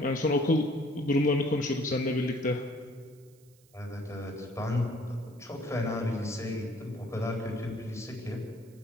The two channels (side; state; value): right; noise; hiss, 30 dB below the sound